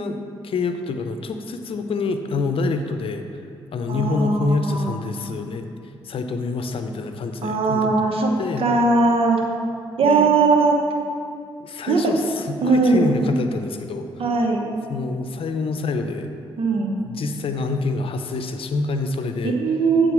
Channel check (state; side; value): normal; both; correlation 0.60